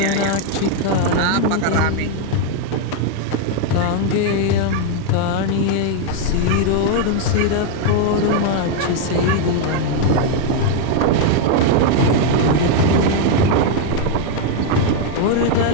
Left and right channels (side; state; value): both; different; correlation 0.00